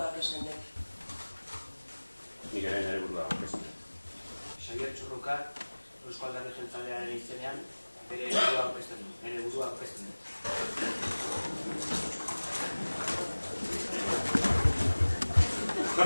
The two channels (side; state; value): both; inverted; correlation -1.00